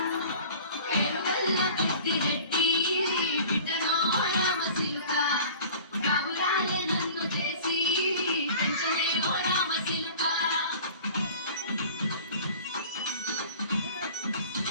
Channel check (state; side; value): inverted; both; correlation -0.43